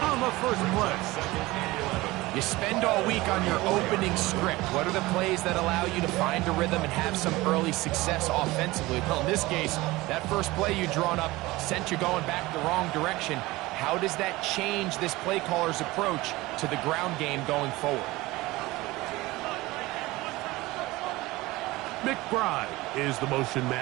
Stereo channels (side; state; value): left; quieter; 20.0 dB